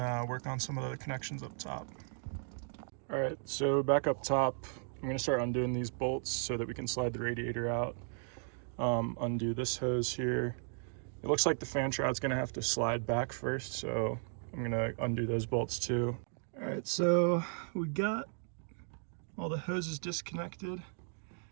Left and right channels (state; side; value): silent; left; 54 dB below the other